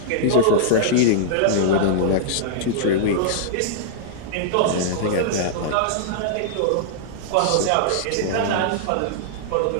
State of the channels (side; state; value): both; different; correlation -0.02